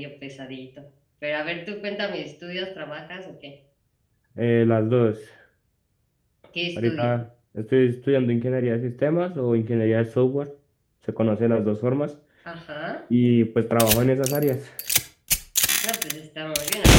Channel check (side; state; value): both; identical; correlation 1.00